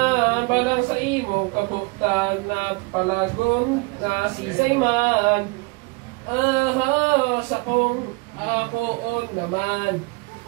Balang sa imong kaputan at palagon na sisay man. Sa kong akoon naman.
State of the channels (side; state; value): left; quieter; 27.1 dB